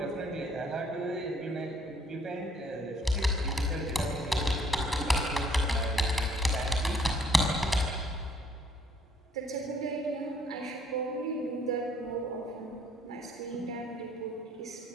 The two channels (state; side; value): normal; both; correlation 0.62